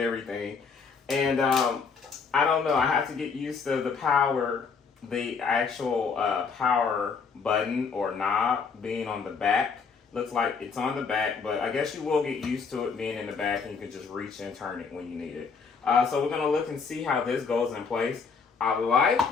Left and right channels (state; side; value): quieter; right; 5.4 dB